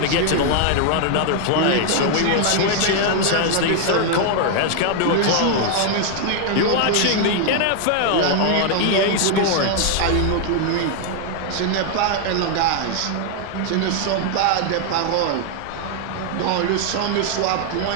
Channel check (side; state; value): both; different; correlation 0.00